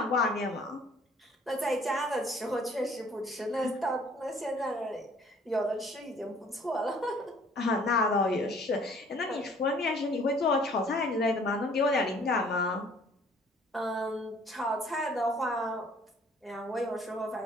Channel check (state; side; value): normal; both; correlation 0.56